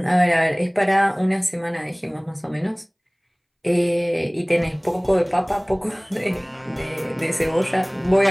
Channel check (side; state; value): both; identical; correlation 1.00